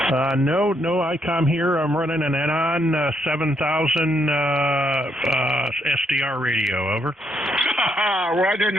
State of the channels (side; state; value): both; normal; correlation 0.75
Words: No ICOM here. I'm running an Enon 7000 SDR radio. Over. Why didn't